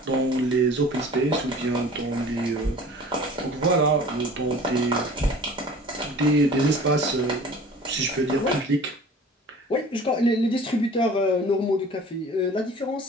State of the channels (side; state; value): both; normal; correlation 0.45